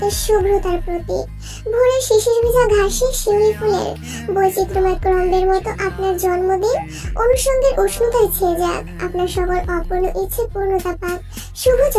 শুভ্রতার প্রতীক, ভোরের শিশির ভেজা ঘাসে শিউলি ফুলের বৈচিত্র্যময় ক্রম্বের মতো আপনার জন্মদিন অনুষঙ্গের উষ্ণতায় ছেয়ে যাক, আপনার সকল অপূর্ণ ইচ্ছে পূর্ণতা পাক, শুভ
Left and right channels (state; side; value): identical; both; correlation 1.00